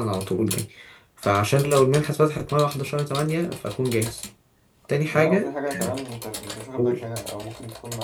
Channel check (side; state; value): both; identical; correlation 1.00